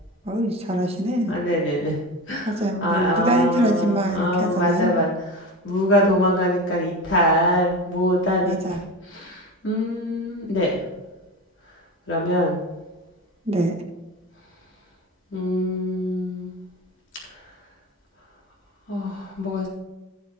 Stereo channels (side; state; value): both; normal; correlation 0.27